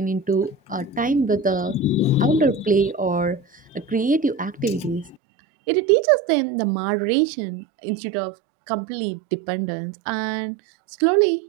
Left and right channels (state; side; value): drops out; left; at 5.2 s